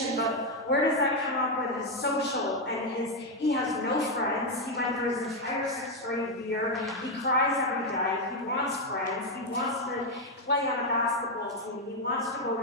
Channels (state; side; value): normal; both; correlation 0.04